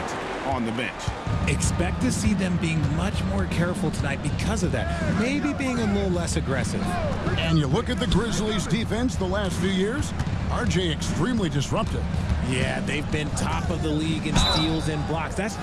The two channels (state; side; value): identical; both; correlation 1.00